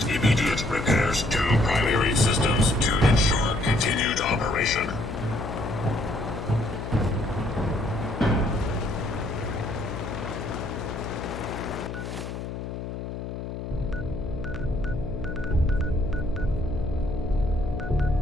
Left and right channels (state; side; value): noise; left; hum, 7 dB below the sound